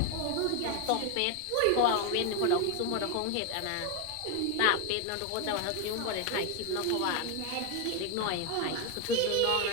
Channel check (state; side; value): different; both; correlation 0.01